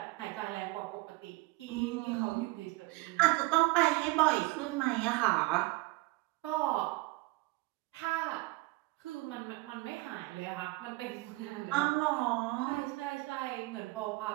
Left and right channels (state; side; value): quieter; left; 23.0 dB